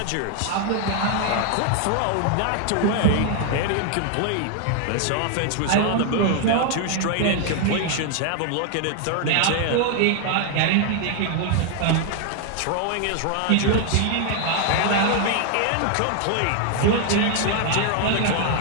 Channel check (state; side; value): different; both; correlation 0.00